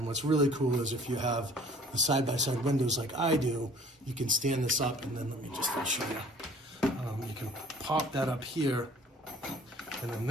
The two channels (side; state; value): both; normal; correlation 0.52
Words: what's really cool is if you have the side-by-side windows like I do, you can stand this up, and then let me just show you. You can pop that up here, and then